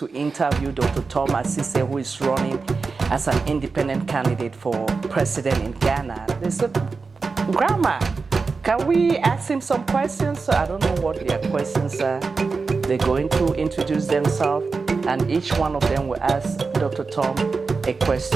interview Dr. Tom Asise, who is running as an independent candidate for president in Ghana. They said, Grandma, can we ask him some questions? So I don't know what their questions are. They're going to introduce themselves, and each one of them will ask Dr. Tom a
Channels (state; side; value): quieter; left; 4.5 dB